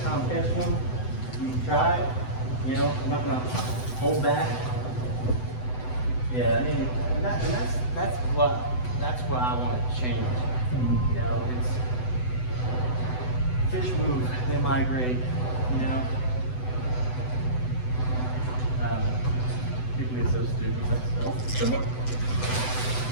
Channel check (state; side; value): late; right; 8.0 ms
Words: how I'm catching them. You can try it. You know, I'm not going to hold back. Yeah, I mean, and that's what I want to change. You know, it's fish move, they migrate. You know. People get so stupid.